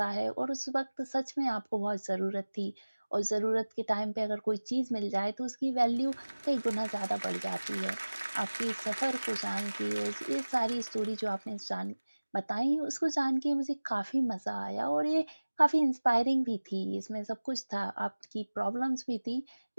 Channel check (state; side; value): inverted; both; correlation -1.00